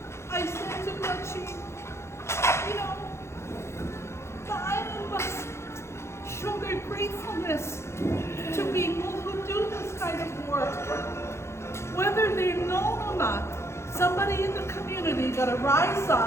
I said to her, the island must show their gratefulness to people who do this kind of work. Whether they're known or not, somebody in the community got to rise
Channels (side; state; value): right; late; 0.13 ms